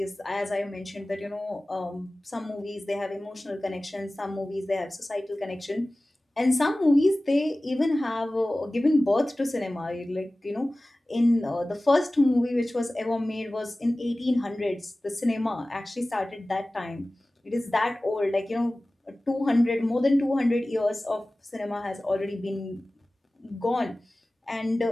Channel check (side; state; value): both; normal; correlation 0.97